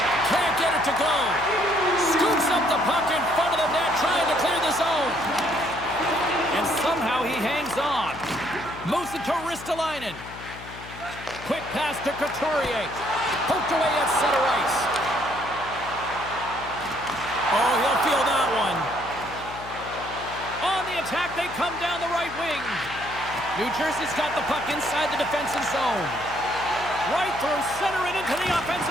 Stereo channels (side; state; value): left; noise; hum, 15 dB below the sound